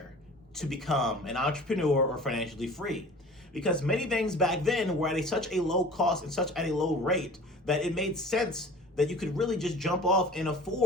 to become an entrepreneur or financially free, because many things back then were at such a low cost and such at a low rate that it made sense that you could really just jump off and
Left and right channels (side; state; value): both; normal; correlation 0.43